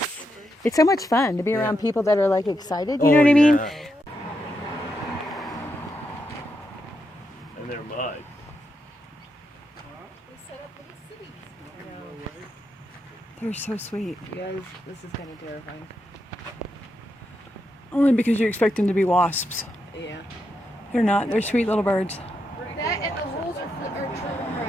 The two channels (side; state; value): both; normal; correlation 0.83